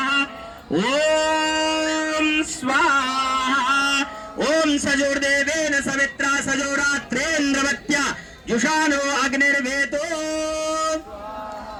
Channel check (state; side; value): identical; both; correlation 1.00